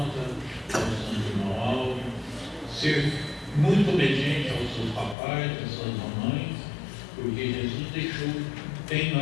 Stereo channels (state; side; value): drops out; right; at 5.2 s